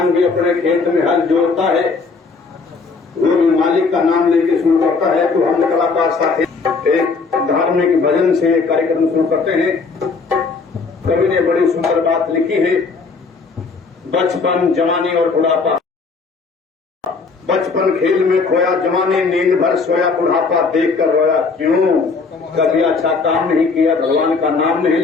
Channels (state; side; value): quieter; right; 4.5 dB